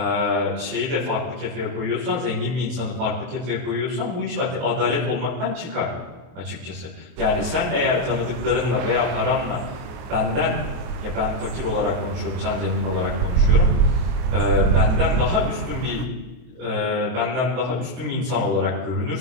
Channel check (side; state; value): left; late; 23 ms